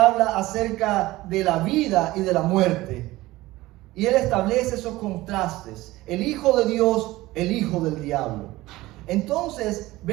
acerca de la vida y de la muerte. Y él establece esos contrastes. El Hijo de Dios, el Hijo del diablo. Entonces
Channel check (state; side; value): quieter; left; 18.3 dB